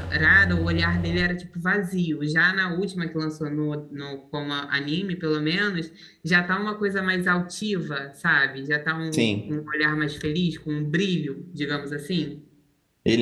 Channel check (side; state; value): both; identical; correlation 1.00